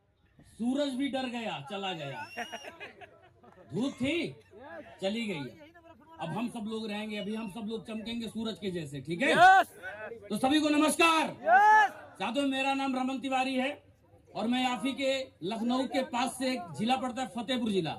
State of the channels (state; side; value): identical; both; correlation 1.00